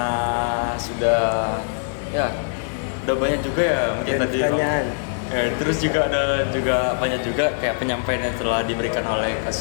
udah banyak juga ya mungkin Dan tadi. pertanyaan. Terus juga ada banyak juga kayak penyampaian yang telah diberikan oleh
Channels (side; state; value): right; silent; 64 dB below the other